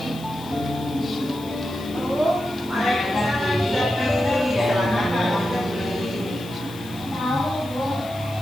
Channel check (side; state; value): left; noise; hiss, 19 dB below the sound